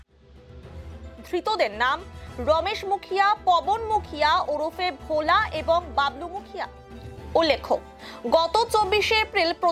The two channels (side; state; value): both; identical; correlation 1.00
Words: ধৃতদের নাম রমেশ মুখিয়া, পবন মুখিয়া ওরফে ভোলা এবং বাবলু মুখিয়া। উল্লেখ্য, গত ২৪শে এপ্রিল